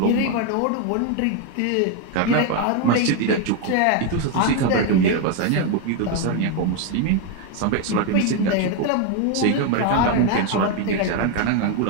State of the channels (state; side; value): different; both; correlation 0.01